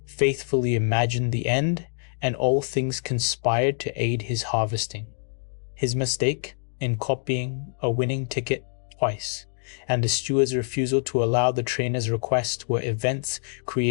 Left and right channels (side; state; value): right; silent; digital silence